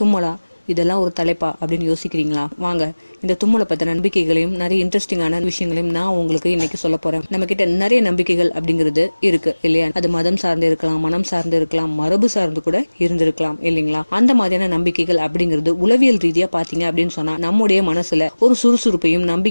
இதெல்லாம் ஒரு தலைப்பா அப்படின்னு யோசிக்கிறீங்களா? வாங்க, இந்த தும்மலை பத்த நம்பிக்கைகளையும் நிறைய இன்ட்ரெஸ்டிங்கான விஷயங்களையும் நான் உங்களுக்கு இன்னைக்கு சொல்ல போறேன். நம்ம கிட்ட நிறைய நம்பிக்கைகள் அப்படிங்கிறது இருக்கு இல்லையா? அது மதம் சார்ந்து இருக்கலாம், மனம் சார்ந்து இருக்கலாம், மரபு சார்ந்து கூட இருந்திருக்கலாம் இல்லைங்களா? அந்த மாதிரியான நம்பிக்கைகள் அப்படிங்கிறது உளவியல் ரீதியா பாத்தீங்க அப்படின்னு சொன்னா நம்முடைய மனசுல ஒரு சுறுசுறுப்பையும்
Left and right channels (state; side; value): inverted; both; correlation -1.00